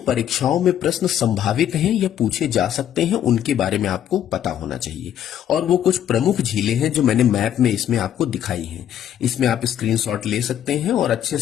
में प्रश्न संभावित हैं या पूछे जा सकते हैं उनके बारे में आपको पता होना चाहिए। और वो कुछ प्रमुख झीलें हैं जो मैंने मैप में इसमें आपको दिखाई हैं। इसमें आप स्क्रीनशॉट ले सकते हैं और अच्छे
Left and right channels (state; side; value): quieter; right; 10.4 dB